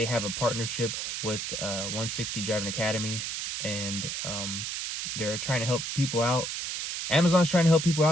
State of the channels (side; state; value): right; noise; hiss, 4 dB below the sound